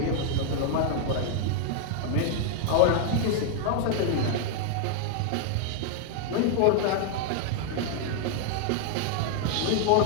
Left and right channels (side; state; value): both; different; correlation 0.00